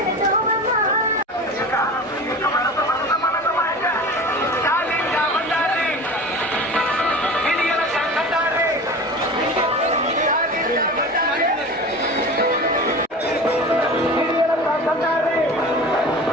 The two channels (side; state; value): both; normal; correlation 0.34